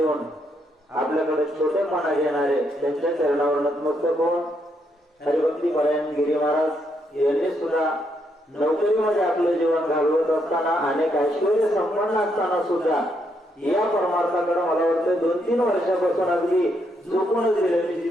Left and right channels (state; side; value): normal; both; correlation 0.76